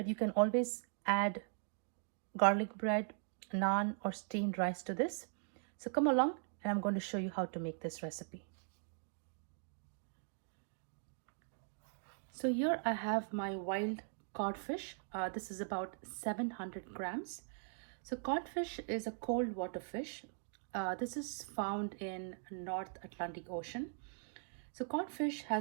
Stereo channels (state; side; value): silent; left; digital silence